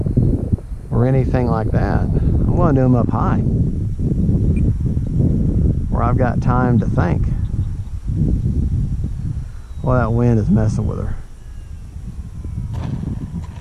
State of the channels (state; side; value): identical; both; correlation 1.00